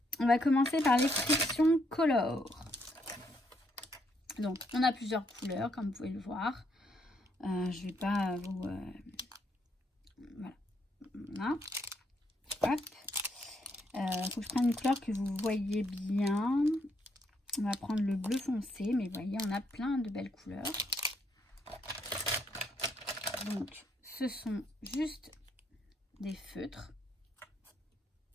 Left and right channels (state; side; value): normal; both; correlation 0.74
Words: on va commencer par les Friction Color. Donc, on a plusieurs couleurs, comme vous pouvez le voir. Je vais pas vous... voilà. Hop. Faut que je prenne une couleur que vous voyez bien. On va prendre le bleu foncé, mais vous voyez, on a plein de belles couleurs. Donc, ce sont juste des feutres.